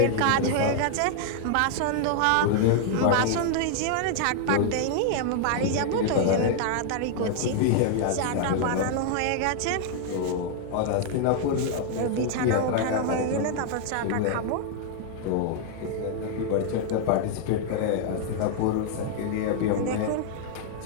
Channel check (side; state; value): both; different; correlation 0.00